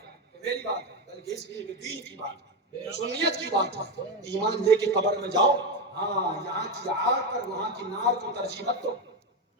میری بات ہے بلکہ اس لیے کہ دین کی بات ہے سنیت کی بات ہے ایمان لے کے قبر میں جاؤ ہاں یہاں کی آگ پر وہاں کی نار کو ترجیح مت دو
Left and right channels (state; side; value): normal; both; correlation 0.12